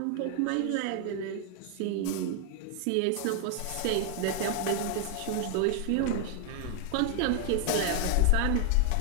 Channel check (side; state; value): both; different; correlation 0.01